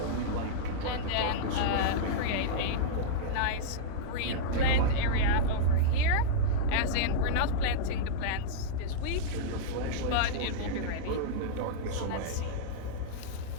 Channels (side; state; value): both; different; correlation -0.03